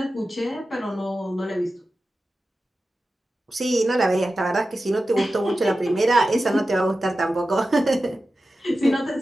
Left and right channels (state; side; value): normal; both; correlation 0.93